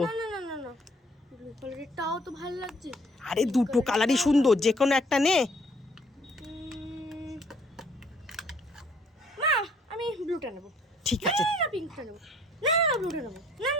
না না না না, ব্লু কালারেরটাও তো ভালো লাগছে। আরে দুটো কালারই সুন্দর, যে কোনো একটা নে। মা আমি ব্লুটা নেব। ঠিক আছে। না পিঙ্কটা নেব। না না ব্লুটা নেব। না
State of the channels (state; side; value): normal; both; correlation 0.61